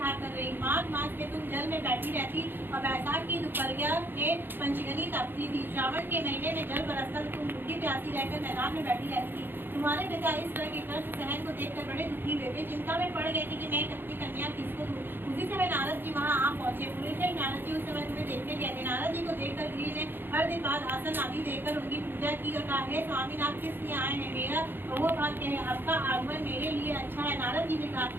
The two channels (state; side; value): late; left; 0.099 ms